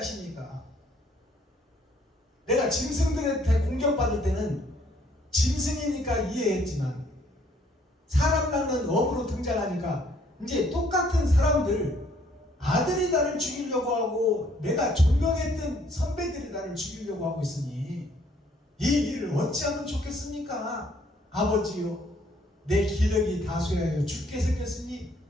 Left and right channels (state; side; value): normal; both; correlation 0.64